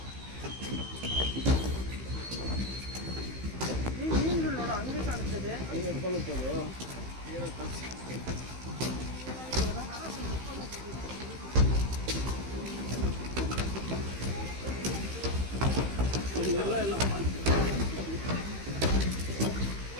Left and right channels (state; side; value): late; left; 15 ms